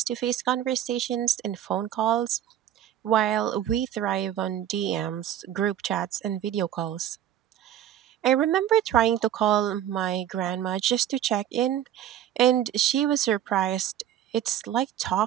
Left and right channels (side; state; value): left; quieter; 11.0 dB